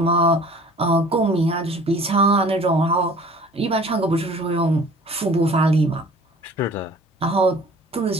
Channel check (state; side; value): normal; both; correlation 0.48